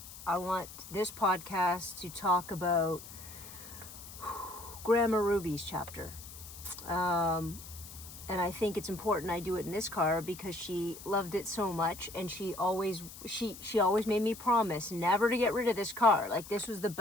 I want this podcast to talk about Grandma Ruby's chapter. And I think it's important I do it in this car because she loved it so much, and she always made me promise never to get rid of this car. Like, this was the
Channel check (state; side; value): noise; left; hiss, 15 dB below the sound